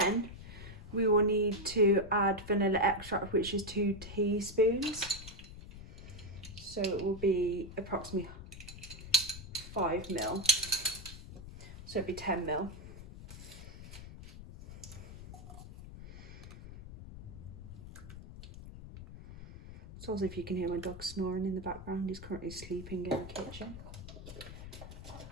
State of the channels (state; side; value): noise; left; rumble, 13 dB below the sound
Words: we will need to add vanilla extract, which is 2 teaspoons. So it will be approximately 5 ml. So it'd be 10 ml. So as if you can hear my dog snoring in the background, he's currently sleeping in the kitchen.